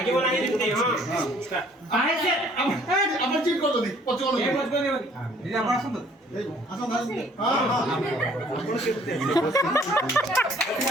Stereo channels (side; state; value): both; normal; correlation 0.58